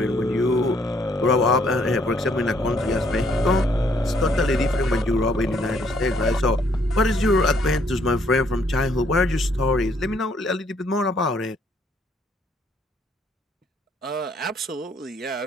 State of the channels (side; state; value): both; normal; correlation 0.67